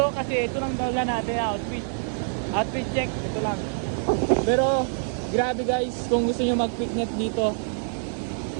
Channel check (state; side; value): silent; left; digital silence